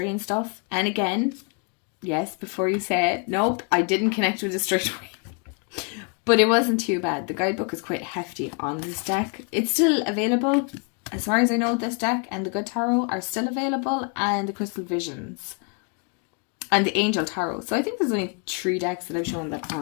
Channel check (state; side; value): quieter; right; 36.3 dB